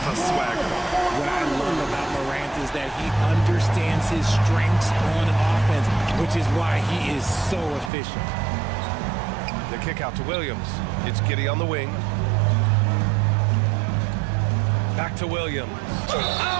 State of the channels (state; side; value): drops out; left; at 7.9 s